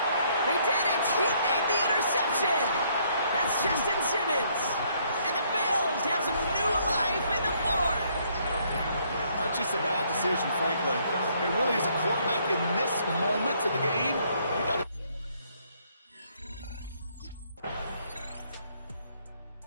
They did it. He made the interception. That's Justin Simmons. And the Bills have some new life in the fourth. That's just a bad decision, frankly. It really is a quarterback in this moment of the game. You got to.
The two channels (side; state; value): both; inverted; correlation -0.68